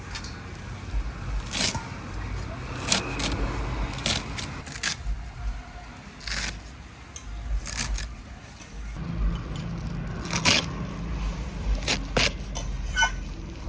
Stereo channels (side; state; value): both; identical; correlation 1.00